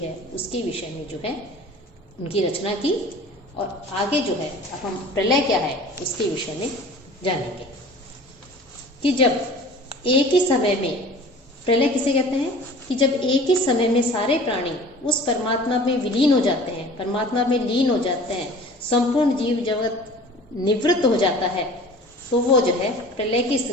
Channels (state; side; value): normal; both; correlation 0.44